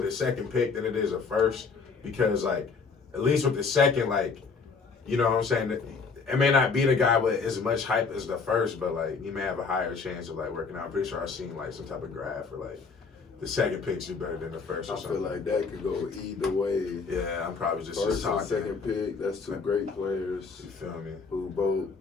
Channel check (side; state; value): right; quieter; 4.9 dB